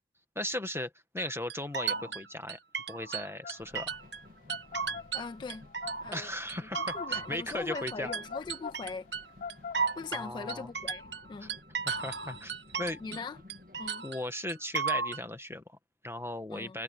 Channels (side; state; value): both; normal; correlation 0.05